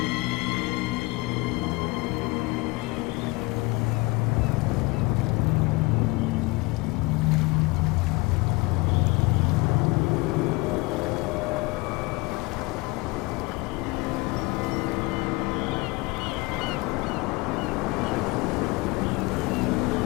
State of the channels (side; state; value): right; quieter; 24.1 dB